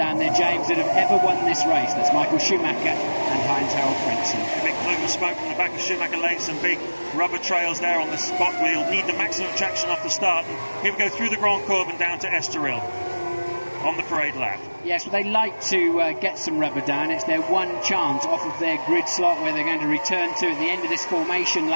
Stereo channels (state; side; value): inverted; both; correlation -1.00